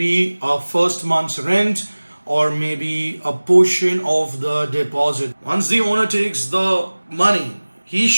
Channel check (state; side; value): inverted; both; correlation -1.00